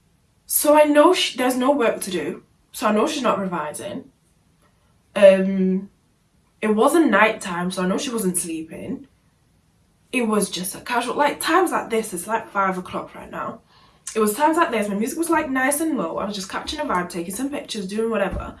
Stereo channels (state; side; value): identical; both; correlation 1.00